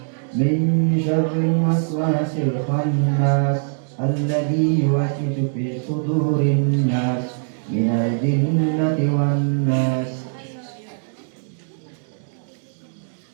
min syarril waswasil khannas, alladzi yuwaswisu fi sudurin nas, minal jinnati wan nas.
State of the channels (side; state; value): left; silent; digital silence